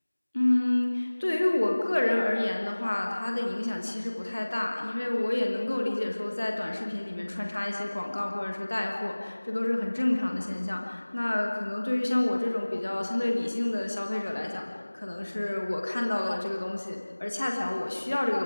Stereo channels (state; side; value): inverted; both; correlation -1.00